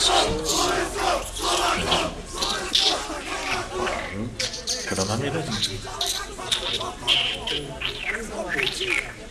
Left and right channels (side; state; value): both; identical; correlation 1.00